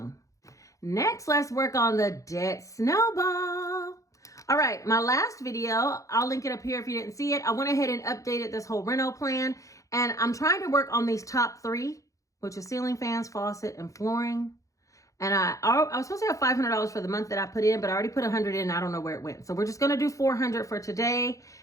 Next, let's work on the debt snowball. All right, my last video, I'll link it up here if you didn't see it. I went ahead and updated this whole reno plan, and I'm trying to work on these top 3, which is ceiling fans, faucet, and flooring. And I was supposed to have $500 for the month that I put in, but I already put $100 in. I don't know where it went. So we're just going to do $400 for today.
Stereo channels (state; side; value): late; right; 0.16 ms